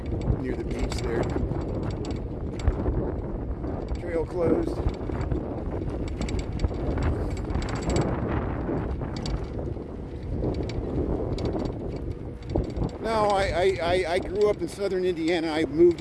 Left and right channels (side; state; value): both; identical; correlation 1.00